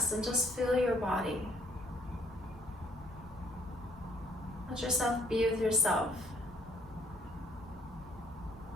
and just feel your body. Let yourself be with yourself.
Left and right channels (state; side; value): normal; both; correlation 0.63